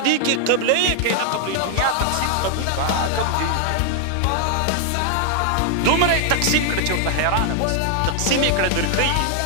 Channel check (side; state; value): both; different; correlation 0.00